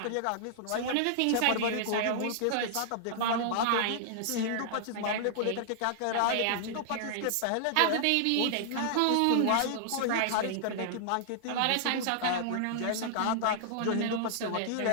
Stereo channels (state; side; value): different; both; correlation -0.01